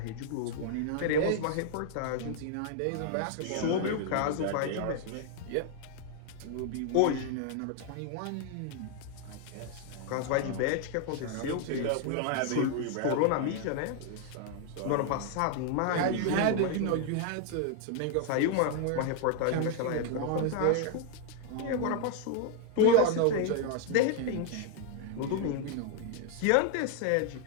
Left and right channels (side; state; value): both; different; correlation 0.00